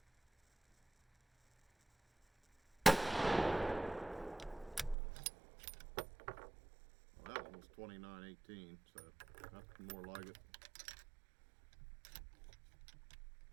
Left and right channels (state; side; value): drops out; left; at 5.0 s